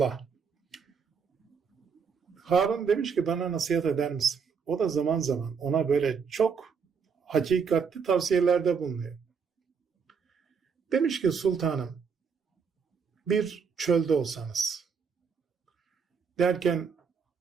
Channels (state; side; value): quieter; left; 6.0 dB